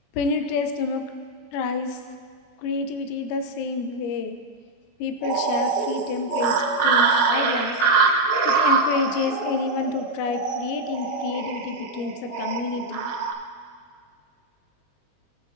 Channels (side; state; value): right; late; 20 ms